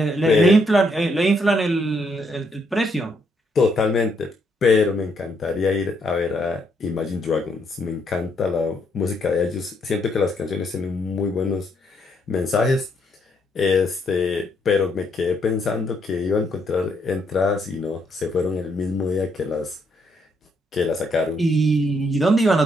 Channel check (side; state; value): both; normal; correlation 0.74